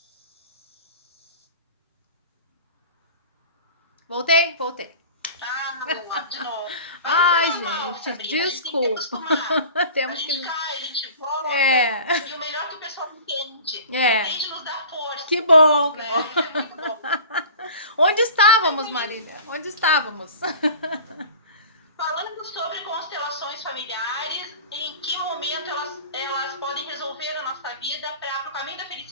Voltei? Voltei. Ah, de novo. Mas isso Ai, é normal, gente, Sabrina. A gente tem que desculpa. acostumar. A Temos que. gente cai, a gente volta. É, E o melhor é que o pessoal entende. é. Entende e nos dá Que força. bom, que bom. Né? Isso é muito bom. Onde estávamos, Marília? Onde estávamos? Falando sobre constelações familiares, em que momento elas podem resolver a nossa vida para o caminho da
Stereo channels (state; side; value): inverted; both; correlation -0.41